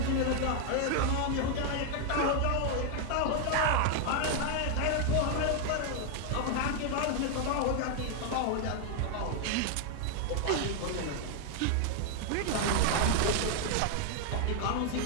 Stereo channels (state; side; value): different; both; correlation 0.00